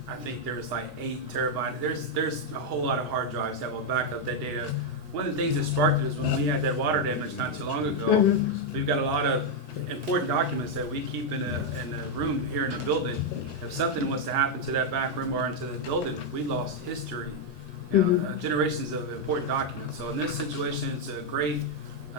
I think there's like 8 terabytes. There's a whole lot of hard drives that will back up that data. One of the things that sparked it is when we had that water damage not too long ago, we've got a lot of important documents that we keep in a room here in the building. If something was to happen to that back room or into the building, we lost history, generations of important documents. So in this situation, it's a great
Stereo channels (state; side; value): normal; both; correlation 0.00